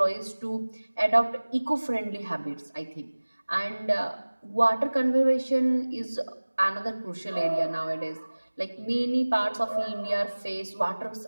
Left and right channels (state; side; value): inverted; both; correlation -1.00